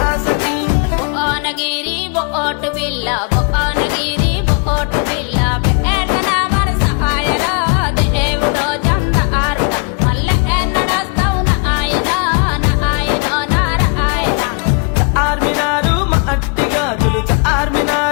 ఆసకి భువనగిరి బోటు బిల్ల భువనగిరి బోటు బిల్ల పేటన మన సహాయరా దేవుడో చందారుడ మళ్ళీ ఎన్నడొస్తావు నాయన నారాయణ చార్మినారు మట్టి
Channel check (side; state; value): right; quieter; 37.8 dB